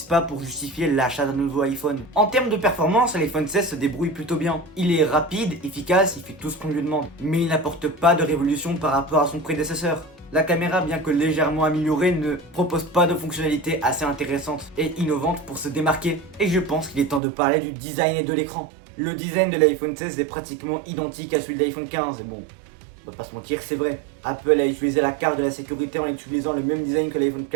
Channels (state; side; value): drops out; left; at 17.2 s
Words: pas pour justifier l'achat d'un nouveau iPhone. En termes de performance, l'iPhone 16 se débrouille plutôt bien. Il est rapide, efficace, il fait tout ce qu'on lui demande, mais il n'apporte pas de révolution par rapport à son prédécesseur. La caméra, bien que légèrement améliorée, ne propose pas de fonctionnalités assez intéressantes et innovantes pour se démarquer. Et je pense qu'il est temps de parler du design et de l'écran. Le design de l'iPhone 16 est pratiquement identique à celui de l'iPhone 15, et bon, on va pas se mentir, c'est vrai. Apple a utilisé la carte de la sécurité en utilisant le même design que l'iPhone